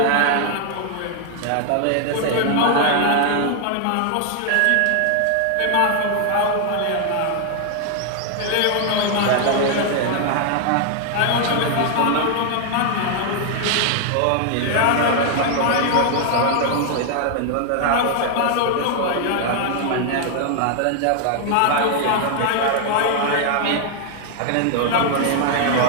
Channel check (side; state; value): both; different; correlation 0.00